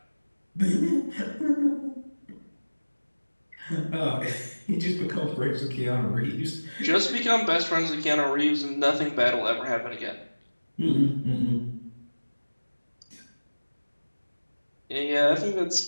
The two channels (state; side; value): inverted; both; correlation -1.00